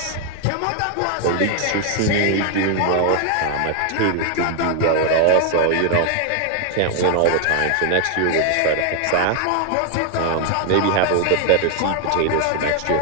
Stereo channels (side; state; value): both; different; correlation 0.01